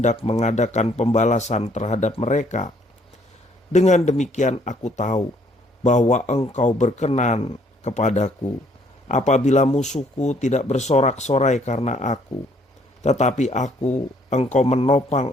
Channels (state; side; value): normal; both; correlation 0.65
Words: mengadakan pembalasan terhadap mereka. Dengan demikian aku tahu bahwa engkau berkenan kepadaku, apabila musuhku tidak bersorak-sorai karena aku. Tetapi engkau menopang